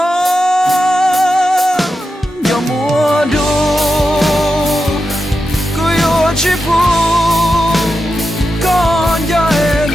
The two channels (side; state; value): both; normal; correlation 0.89